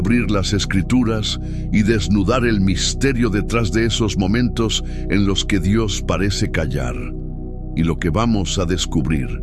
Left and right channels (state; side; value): identical; both; correlation 1.00